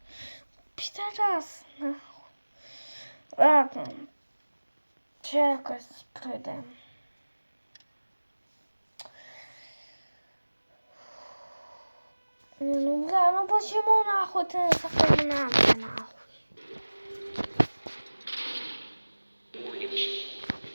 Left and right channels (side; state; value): both; inverted; correlation -1.00